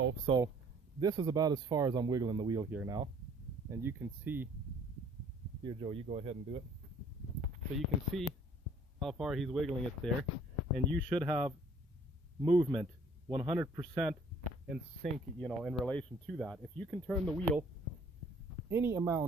So this is about as far as I'm wiggling the wheel here now. And you can see, here Joe, you go ahead and do it. So you can see how far he's wiggling it there. And you should have movement 100% in sync, you know, in relation to that. If you can turn the wheel any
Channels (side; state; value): both; normal; correlation 0.57